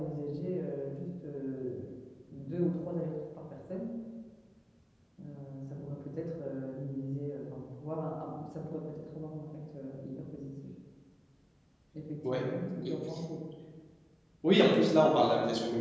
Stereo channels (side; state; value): both; identical; correlation 1.00